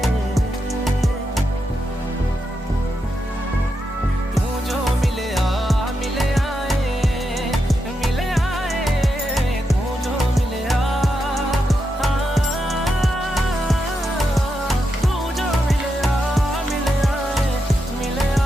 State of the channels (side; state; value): both; normal; correlation 0.85